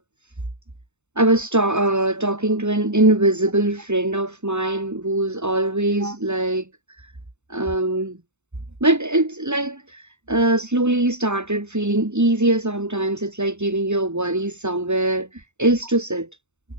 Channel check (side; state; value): left; late; 0.83 ms